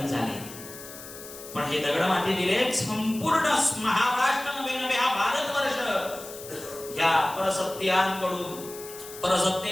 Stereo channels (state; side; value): noise; left; hiss, 14 dB below the sound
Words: झाले, पण हे दगड माती दिले संपूर्ण महाराष्ट्र नव्हे हा भारतवर्ष या परसत्यांकडून,